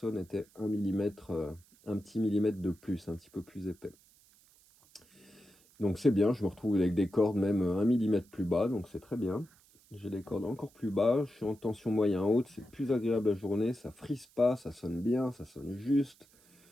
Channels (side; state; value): right; noise; hiss, 29 dB below the sound